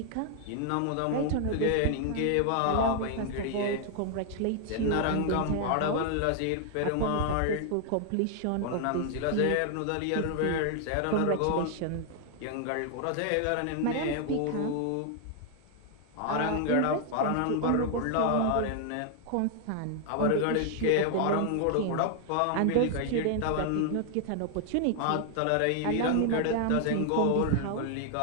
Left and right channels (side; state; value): both; different; correlation 0.00